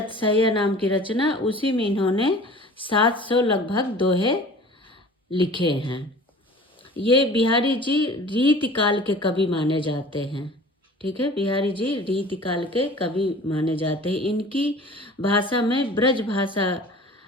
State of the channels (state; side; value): normal; both; correlation 0.43